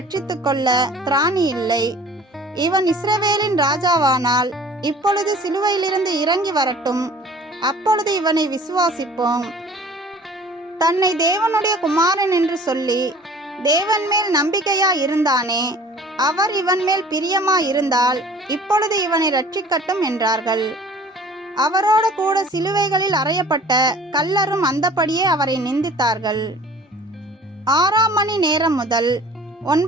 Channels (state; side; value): normal; both; correlation 0.48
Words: கொள்ள திராணி இல்லை. இவன் இஸ்ரவேலின் ராஜாவானால் இப்பொழுது சிலுவையிலிருந்து இறங்கி வரட்டும், அப்பொழுது இவனை விசுவாசிப்போம். தன்னை தேவனுடைய குமாரன் என்று சொல்லி தேவன் மேல் நம்பிக்கையா இருந்தானே, அவர் இவன் மேல் பிரியமா இருந்தால் இப்பொழுது இவனை ரட்சிக்கட்டும் என்றார்கள். அவரோடு கூட சிலுவைகளில் அறையப்பட்ட கள்ளரும் அந்தபடியே அவரை நிந்தித்தார்கள். 6ஆம் மணி நேரம் முதல்